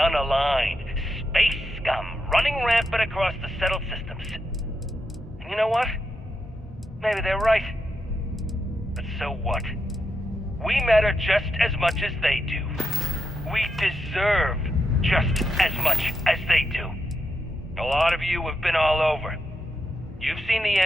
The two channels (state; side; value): normal; both; correlation 0.84